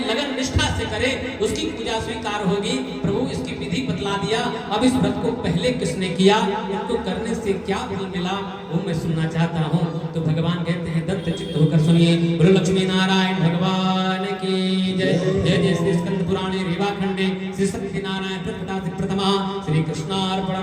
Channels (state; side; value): identical; both; correlation 1.00